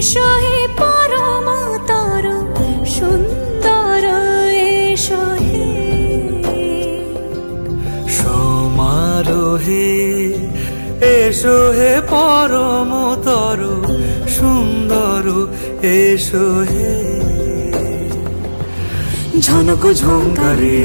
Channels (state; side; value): inverted; both; correlation -1.00